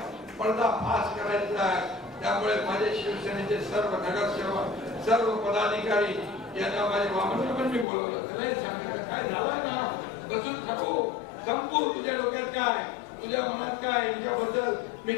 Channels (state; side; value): drops out; right; at 7.9 s